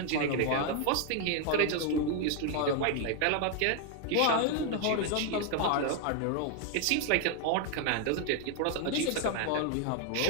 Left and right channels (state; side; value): different; both; correlation 0.00